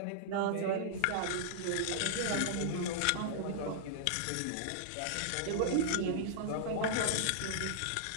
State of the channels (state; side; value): different; both; correlation -0.01